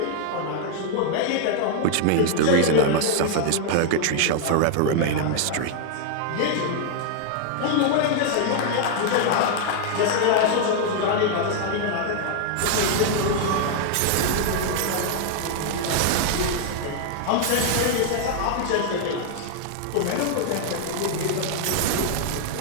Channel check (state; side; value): different; both; correlation 0.00